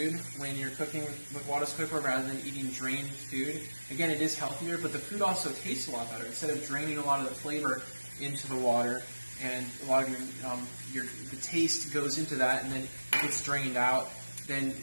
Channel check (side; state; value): both; inverted; correlation -1.00